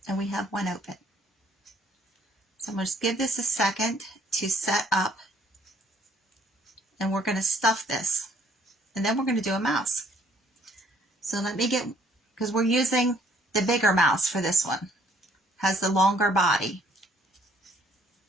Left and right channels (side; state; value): both; normal; correlation 0.63